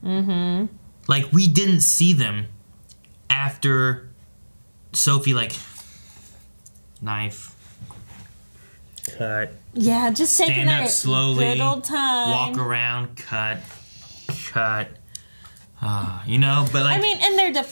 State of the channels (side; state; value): both; inverted; correlation -1.00